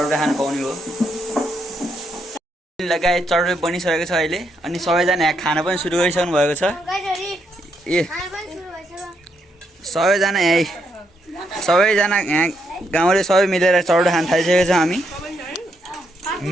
खानु पाउने हो। लगाए चड्डो बनिसकेको छ अहिले, अनि सबैजना यहाँ खाना पनि सुरु गरिसक्नु भएको छ। ए सबैजना यहाँ गाउँले सबै मिलेर चड्डो खान थालिसकेको छ। हामी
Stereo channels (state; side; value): normal; both; correlation 0.78